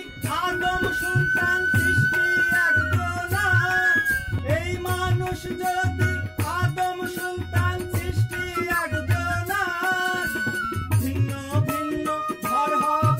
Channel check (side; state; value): both; identical; correlation 1.00